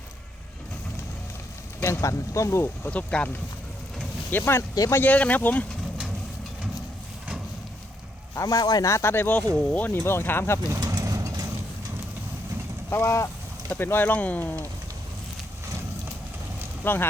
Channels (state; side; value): normal; both; correlation 0.76